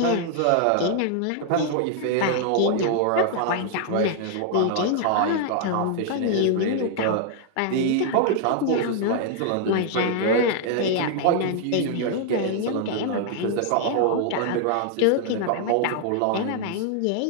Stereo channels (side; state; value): both; different; correlation 0.00